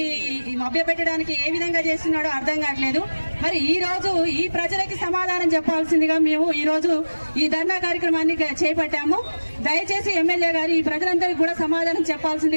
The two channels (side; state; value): both; inverted; correlation -1.00